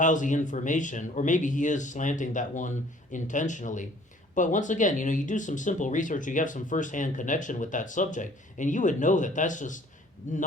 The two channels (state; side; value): normal; both; correlation 0.55